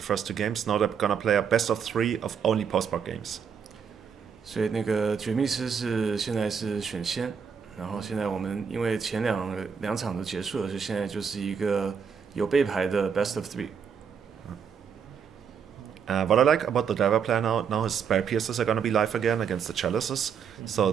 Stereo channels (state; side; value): quieter; left; 6.9 dB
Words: first 2 games. Now they're gonna play a best of 3 of only postmark games. 所以那个绝密师现在是选先，然后现在我们因为前两场都结束了，所以现在就是一个有备牌的 best of 3。What I like about the Dara player now is Spell Piercers are gonna be live again against the Chalices, so